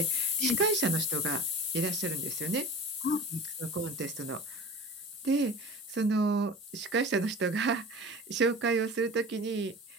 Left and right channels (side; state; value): both; normal; correlation 0.37